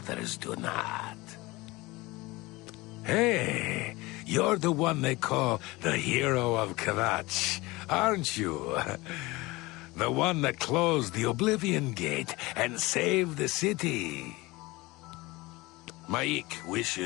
do not. Hey, you're the one they call the hero of Kavach, aren't you? The one that closed the Oblivion gate and saved the city. Maik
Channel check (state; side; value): quieter; right; 21.8 dB